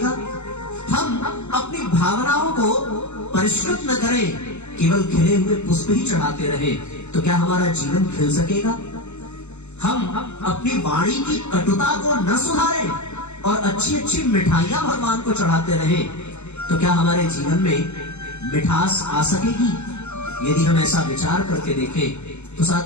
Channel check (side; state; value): right; late; 0.82 ms